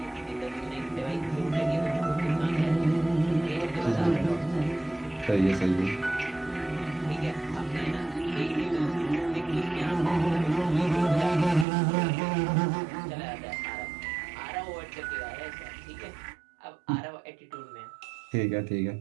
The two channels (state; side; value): drops out; left; at 11.7 s